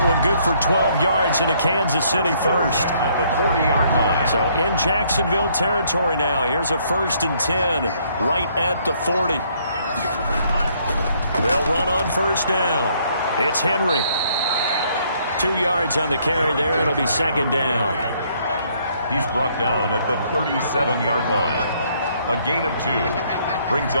one good for 12 yards into Kansas City first. At the 40-yard line. So in Jacksonville territory now. Here's a 1st and 10 right at the 40. They'll run on first down. It's Henry. 2 yards on the carry there. It'll be 2nd down. He's brought down at the 37-yard line. A gain of 2 brings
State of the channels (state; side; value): inverted; both; correlation -0.67